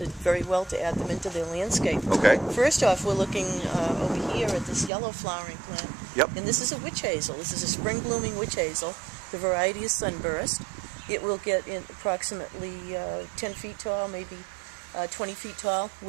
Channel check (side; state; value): left; drops out; at 4.9 s